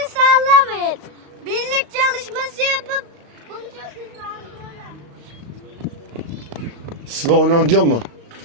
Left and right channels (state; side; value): late; left; 35 ms